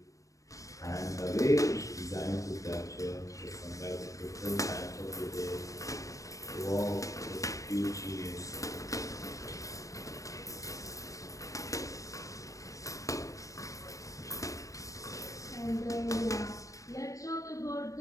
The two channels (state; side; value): late; right; 0.16 ms